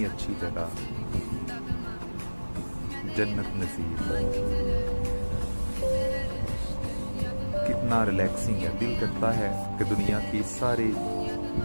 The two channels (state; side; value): inverted; both; correlation -1.00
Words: अच्छी जगह, जन्नत नज़ीर। कितना रिलैक्सिंग है, दिल करता है कि दुनिया की सारी